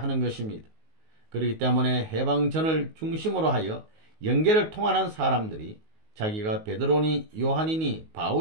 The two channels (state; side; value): late; left; 19 ms